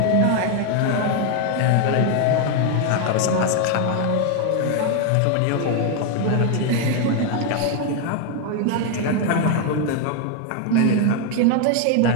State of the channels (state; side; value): different; both; correlation 0.01